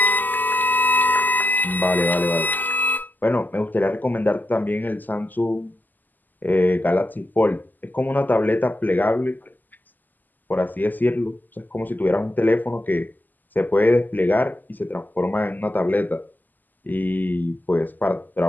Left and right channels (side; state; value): right; late; 0.085 ms